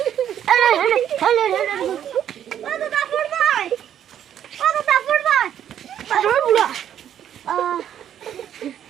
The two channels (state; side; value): quieter; left; 10.0 dB